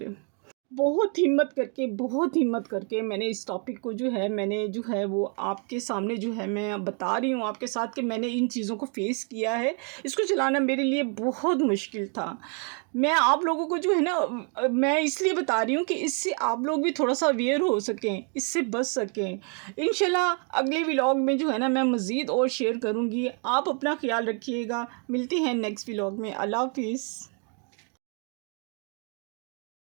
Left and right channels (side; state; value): left; quieter; 39.1 dB